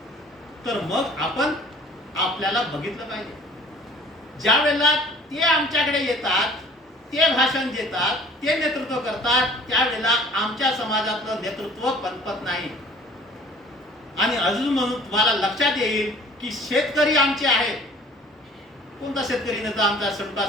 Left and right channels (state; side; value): normal; both; correlation 0.50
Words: तर मग आपण आपल्याला बघितलं पाहिजे. ज्या वेळेला ते आमच्याकडे येतात ते भाषण देतात, ते नेतृत्व करतात, त्यावेळेला आमच्या समाजातलं नेतृत्व पनपत नाही. आणि अजून म्हणून तुम्हाला लक्षात येईल की शेतकरी आमचे आहेत. कोणता शेतकरी नेता आमचा